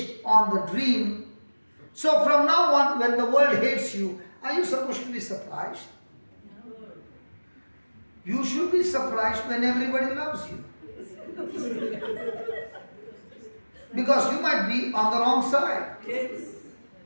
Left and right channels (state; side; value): inverted; both; correlation -1.00